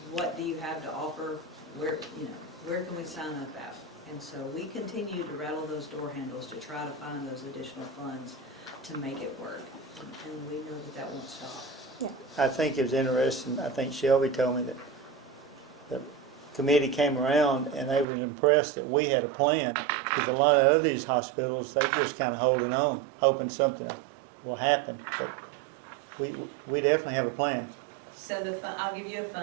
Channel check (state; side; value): drops out; left; at 18.1 s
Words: do you have to offer? Where can we sign up at? And so we continue to rattle those door handles to try to find those additional funds to make it work. And we know that that won't stop. I think it was interesting, I think Shelby told me that the committee came around and they were impressed that we had a plan, because a lot of these hospitals, they just kind of holding on, hoping something will happen. But we definitely have a plan. So I'll give you a